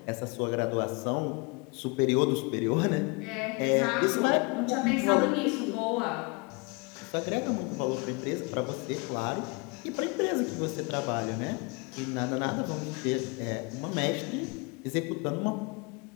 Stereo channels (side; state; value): right; quieter; 29.8 dB